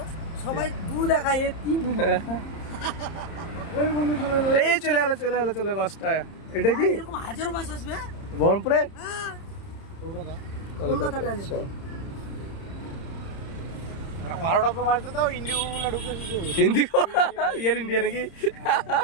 সবাই দু দেখায় এ তিন। এই চলে এলো বাসটা। এটা কি এরকম হাজারো বাস আসবে বহরমপুরে? কলকাতা এয়ার ইন্ডিয়া নাকি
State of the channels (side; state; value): right; late; 30 ms